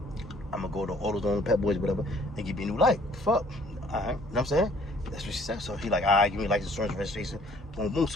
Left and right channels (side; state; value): both; normal; correlation 0.58